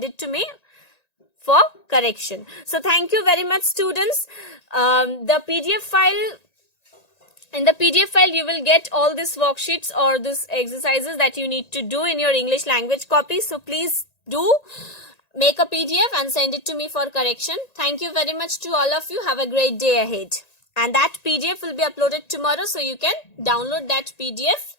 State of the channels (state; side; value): late; right; 1.9 ms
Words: it to me for correction. So thank you very much, students. The PDF file, in the PDF file, you will get all these worksheets or these exercises that you need to do in your English language copy. So please do make a PDF and send it to me for correction. Thank you very much to all of you. Have a great day ahead. And that PDF will be uploaded tomorrow, so you can download that PDF